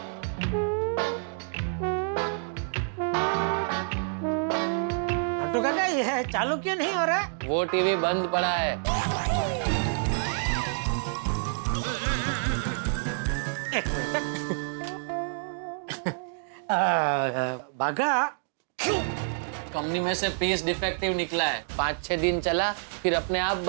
तो काका ये चालू क्यों नहीं हो रहा? वो टीवी बंद पड़ा है। एक मिनट। बागा, कंपनी में से पीस डिफेक्टिव निकला है, 5-6 दिन चला फिर अपने आप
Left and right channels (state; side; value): silent; left; digital silence